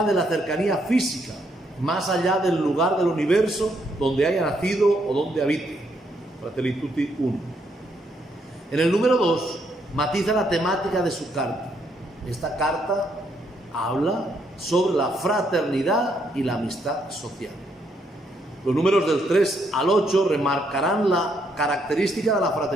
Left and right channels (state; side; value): normal; both; correlation 0.74